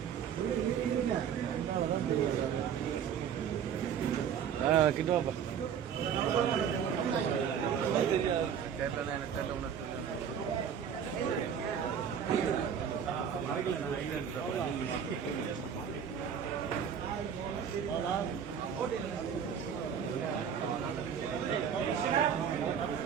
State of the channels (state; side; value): quieter; left; 8.0 dB